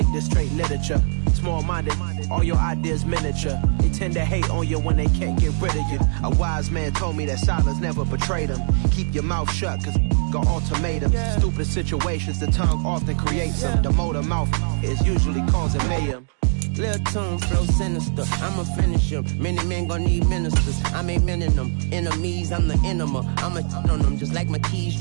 this straight literature. Small-minded, all your ideas miniature. They tend to hate on you when they can't get rid of you. A wise man told me that silence never betrayed him. Keep your mouth shut, cause got ultimatums. Stupid situations, the tongue often creates them. The motor mouth is usually causing mayhem. Lil' tune, flow sinister, I'ma finish him. Many men gon' need ministers, I ain't mending them. Enemies, I'm the enema, I'ma on them. Just like my keys,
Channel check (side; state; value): left; silent; 64 dB below the other